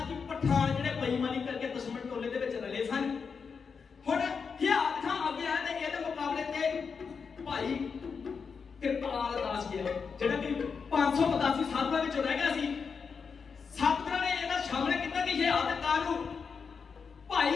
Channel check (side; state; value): right; quieter; 5.7 dB